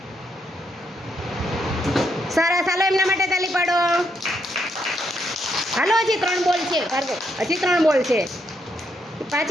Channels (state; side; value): normal; both; correlation 0.77